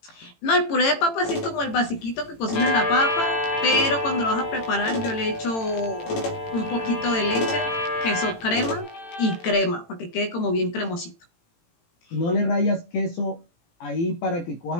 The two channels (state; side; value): late; right; 18 ms